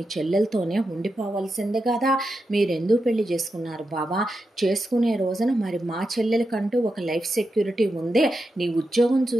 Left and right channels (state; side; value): normal; both; correlation 0.88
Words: చెల్లెలతోనే ఉండిపోవాల్సిందే కదా. మీరెందుకు పెళ్లి చేసుకున్నారు బాబా? చేసుకునే రోజున మరి మా చెల్లెలకంటూ ఒక లైఫ్ సెక్యూరిటీ ఉంది. నీ ఉద్యోగం